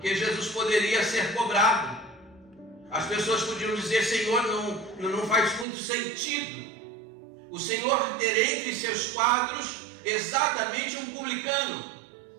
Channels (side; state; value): left; drops out; at 5.7 s